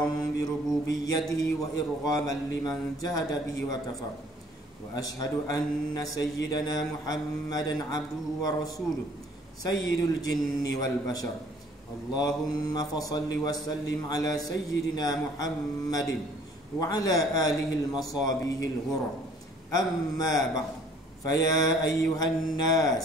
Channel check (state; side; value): normal; both; correlation 0.57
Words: bi rububiyyatihi wa irghaman liman jahada bihi wa kafar. Wa ashhadu anna sayyidana Muhammadan abduhu wa rasuluhu sayyidul jinni wal bashar. Allahumma fasalli wa sallim ala sayyidina Muhammadin wa ala alihi al-masabihil ghurra. Amma ba'd, faya ayyuhan